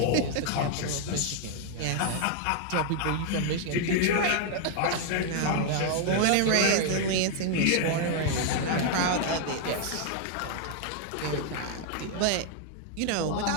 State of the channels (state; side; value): different; both; correlation 0.00